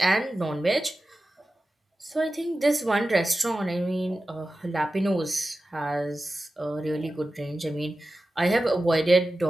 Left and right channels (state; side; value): normal; both; correlation 0.94